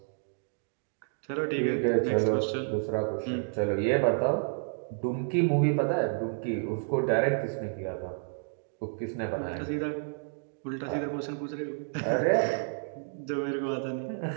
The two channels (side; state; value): left; silent; digital silence